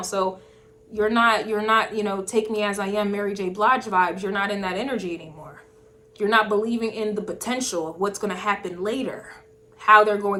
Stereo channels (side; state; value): both; identical; correlation 1.00